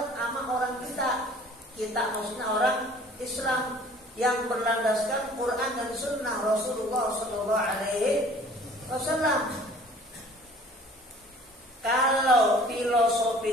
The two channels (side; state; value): both; normal; correlation 0.51